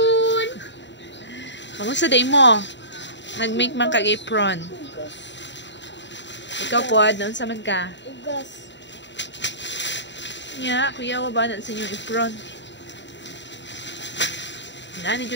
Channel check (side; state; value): right; late; 0.52 ms